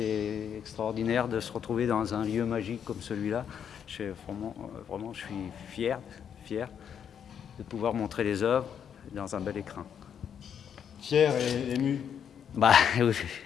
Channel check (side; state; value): right; quieter; 8.2 dB